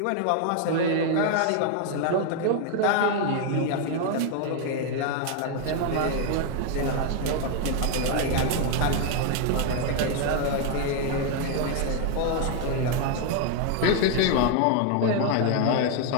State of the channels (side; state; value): both; different; correlation 0.00